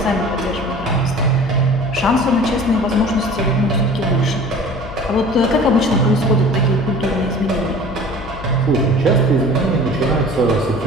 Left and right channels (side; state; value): left; noise; hum, 13 dB below the sound